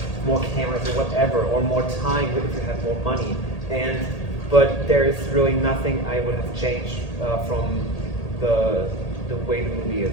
more cameras or whatever, or more time if you have more money, but there is really nothing I would have changed from the way the movie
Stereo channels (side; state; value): right; late; 1.8 ms